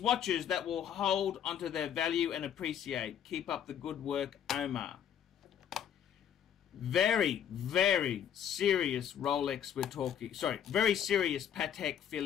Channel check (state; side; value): quieter; right; 9.1 dB